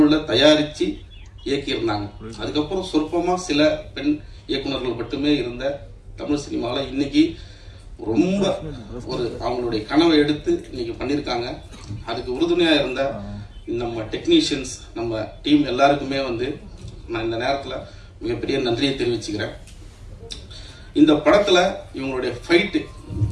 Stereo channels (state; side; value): identical; both; correlation 1.00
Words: தயாரித்து இயக்கியிருந்தாங்க. அதுக்கப்புறம் சொற்பமாக சில பெண் இயக்குநர்கள் மட்டுமே இருந்த தமிழ் சினிமாவில் இன்னைக்கு ரொம்ப அவங்களுடைய கனவை எடுத்து இன்னைக்கு பண்ணியிருக்காங்க. அதுக்கு உறுதுணையாக இருந்த நம்ம டெக்னீஷியன்ஸ், நம்ம டீம் எல்லாருக்குமே வந்து நான் இந்த நேரத்தில் மிகப்பெரிய நன்றியை தெரிவிச்சுக்கிறேன். இந்த படத்தில் இவங்களுடைய ஃபைட்டு,